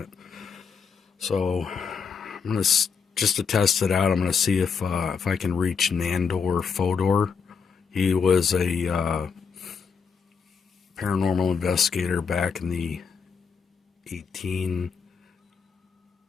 So I'm gonna just to test it out, I'm gonna see if I can reach Nandor Fodor. He was a paranormal investigator back in the 18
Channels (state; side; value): quieter; right; 6.0 dB